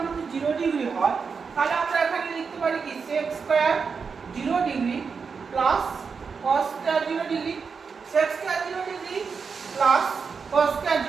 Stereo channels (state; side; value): quieter; left; 5.5 dB